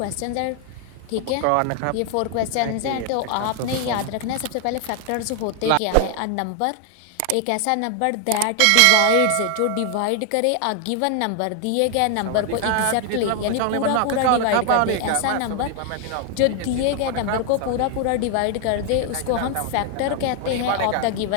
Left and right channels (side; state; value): both; different; correlation 0.00